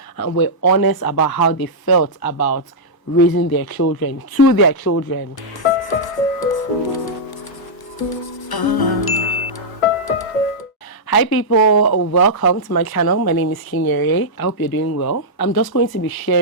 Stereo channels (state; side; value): late; right; 1.0 ms